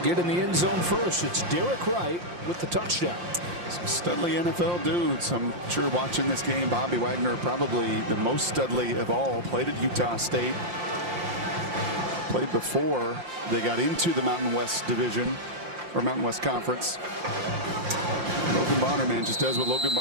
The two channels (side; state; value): left; late; 5.7 ms